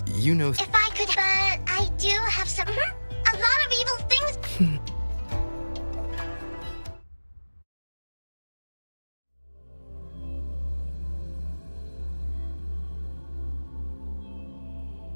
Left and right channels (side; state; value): both; inverted; correlation -1.00